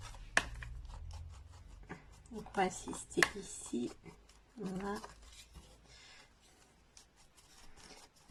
Donc, on va assister ici. Voilà.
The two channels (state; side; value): identical; both; correlation 1.00